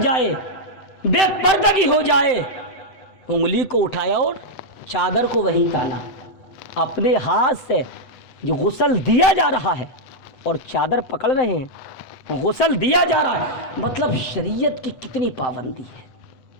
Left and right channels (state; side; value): late; right; 8.1 ms